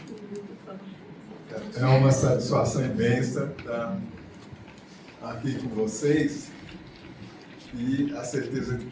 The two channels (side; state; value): both; identical; correlation 1.00